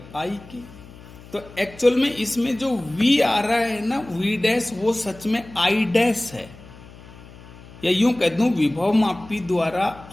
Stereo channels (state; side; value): noise; left; hum, 19 dB below the sound